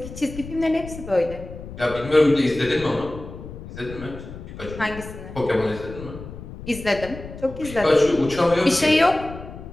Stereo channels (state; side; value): noise; left; rumble, 13 dB below the sound